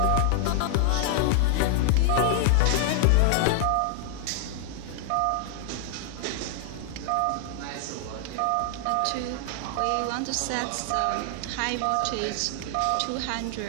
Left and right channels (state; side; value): different; both; correlation 0.00